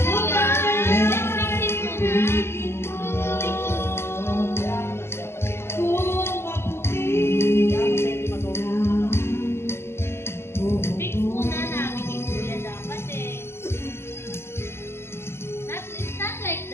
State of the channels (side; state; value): right; late; 0.12 ms